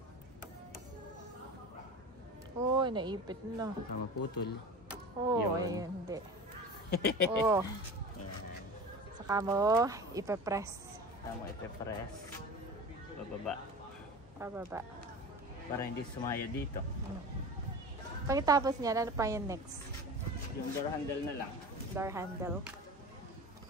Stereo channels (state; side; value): normal; both; correlation 0.33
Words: Uy, naipit na. Tama putol. Oh, ayun, hindi. Oh. Saka mo, ipe-press. Tama, ipe-press. Pababa. Para hindi sumaya dito. Pagkatapos niya, ano pa yung next? Yung door handle na lang. Door handle.